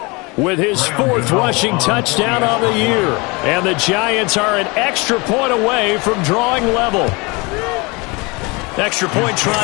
with his 4th rushing touchdown on the year. And the Giants are an extra point away from drawing level. Extra point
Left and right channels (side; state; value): right; quieter; 27.0 dB